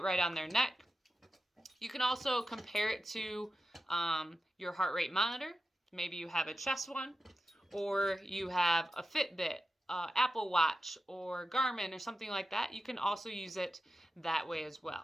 right on their neck. You can also compare it to your heart rate monitor. Maybe you have a chest one, or you have a Fitbit, Apple Watch, or Garmin, or something like that. You can also use it that way as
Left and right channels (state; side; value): normal; both; correlation 0.92